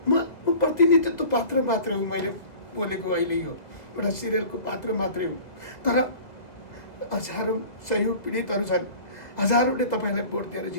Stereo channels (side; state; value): right; late; 2.0 ms